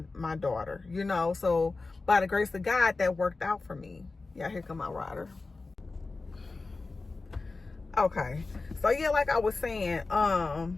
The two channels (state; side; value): quieter; right; 3.7 dB